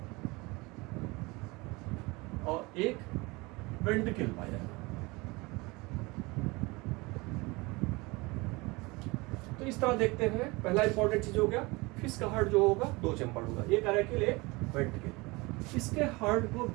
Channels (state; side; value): quieter; left; 24.3 dB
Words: और एक वेंट्रिकल पाया जाएगा। तो इस तरह देखते हैं। पहला इंपॉर्टेंट चीज हो गया, फिश का हार्ट जो होगा 2 चैम्बर्ड होगा, एक अरैकिल एक वेंट्रिकल। इसके हार्ट को